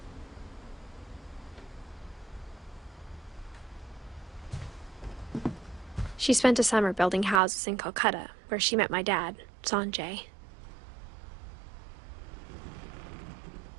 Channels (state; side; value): drops out; left; at 7.4 s